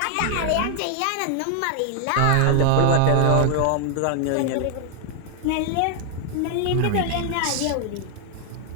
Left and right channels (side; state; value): both; different; correlation 0.00